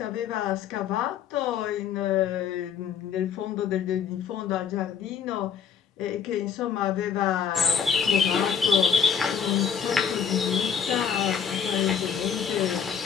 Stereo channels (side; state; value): right; quieter; 7.4 dB